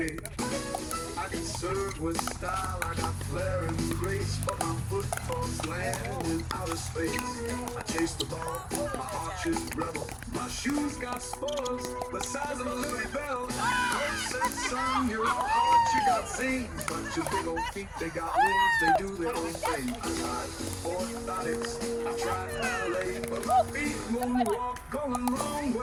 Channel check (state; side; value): identical; both; correlation 1.00